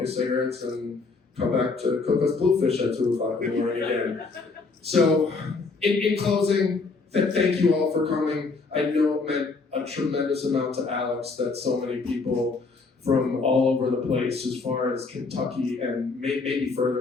his cigarettes and come back to cook us bluefish at 2 o'clock in the morning again. So, in closing, thank you all for coming. I know it meant a tremendous amount to Alex that so many people from all over the place, as far as Kentucky and maybe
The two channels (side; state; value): right; quieter; 4.1 dB